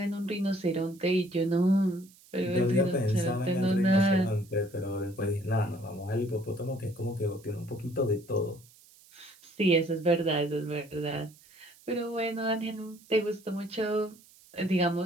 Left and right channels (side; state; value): right; noise; hiss, 26 dB below the sound